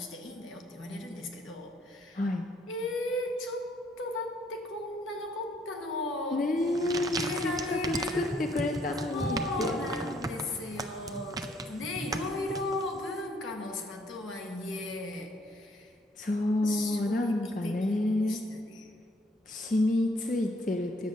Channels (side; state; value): both; normal; correlation 0.66